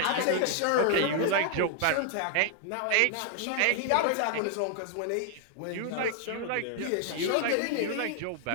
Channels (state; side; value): different; both; correlation 0.00